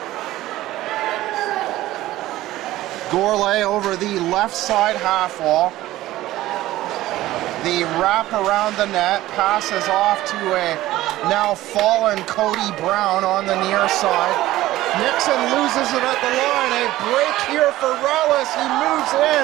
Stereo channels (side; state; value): left; quieter; 15.9 dB